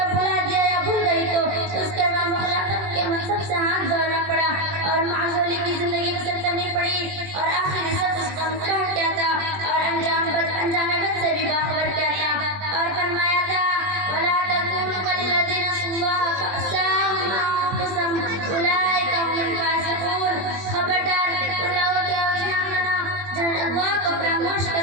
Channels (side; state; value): left; late; 21 ms